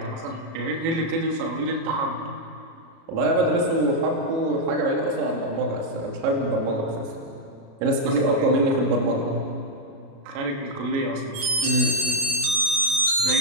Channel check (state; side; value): late; left; 36 ms